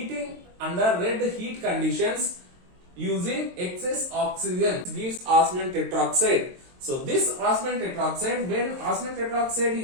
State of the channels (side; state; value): left; late; 22 ms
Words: under red heat conditions using excess oxygen gives osmium tetroxide. So this osmium tetroxide, when osmium tetroxide